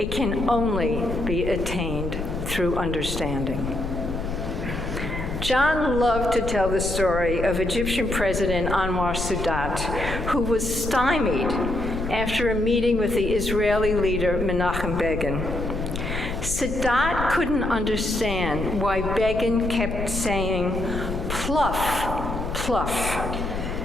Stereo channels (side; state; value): left; noise; hum, 10 dB below the sound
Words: can only be attained through understanding. John loved to tell the story of Egyptian President Anwar Sadat, who was stymied after a meeting with the Israeli leader Menachem Begin. Sadat couldn't understand why Begin kept saying, "Pluff, pluff."